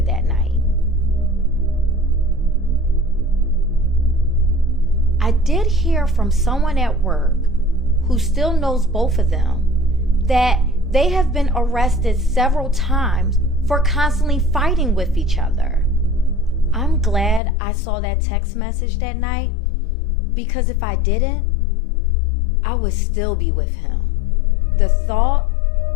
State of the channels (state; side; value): drops out; right; at 17.4 s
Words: that night. I did hear from someone at work who still knows both of them that they have been arrested several times for constantly fighting with each other. I'm glad I saw that text message that night, because if I didn't, I would still be with him. The thought,